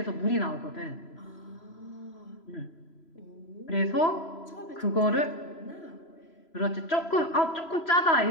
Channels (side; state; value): right; late; 3.0 ms